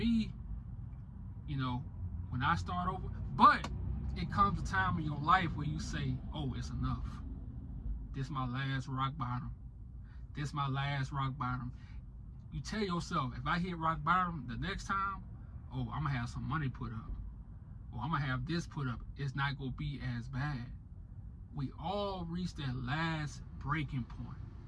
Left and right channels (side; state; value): both; identical; correlation 1.00